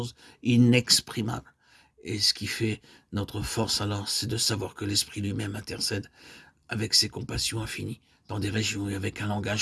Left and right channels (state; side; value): identical; both; correlation 1.00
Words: inexprimables. Et ce qui fait notre force alors, c'est de savoir que l'Esprit lui-même intercède avec ses compassions infinies dans des régions et avec un